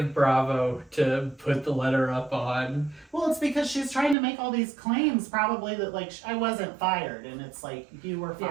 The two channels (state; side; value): drops out; left; at 4.2 s